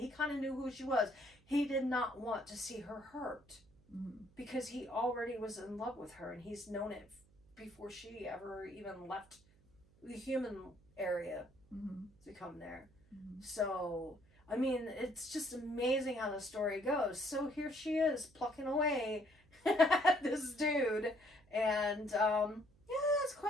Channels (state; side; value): noise; right; hum, 30 dB below the sound